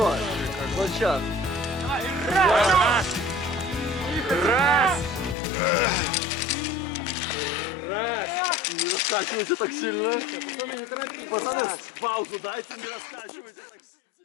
Вот сейчас. Раз! Раз! Раз! Не раскачивайте так сильно. Пацаны, не торопитесь. Пацаны, паузу дайте, не раскачивайте так сильно.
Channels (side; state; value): right; drops out; at 5.4 s